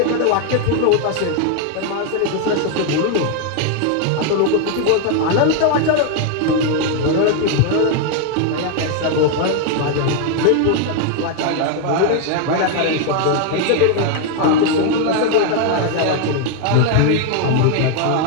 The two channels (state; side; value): different; both; correlation 0.00